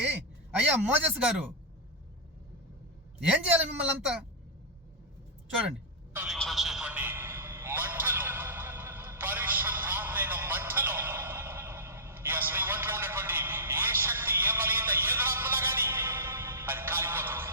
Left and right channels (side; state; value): both; normal; correlation -0.12